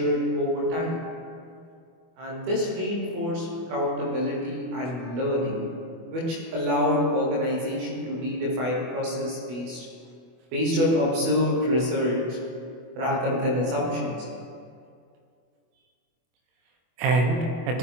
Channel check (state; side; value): late; left; 24 ms